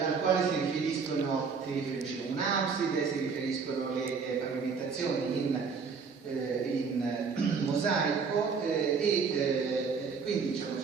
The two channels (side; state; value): left; quieter; 5.4 dB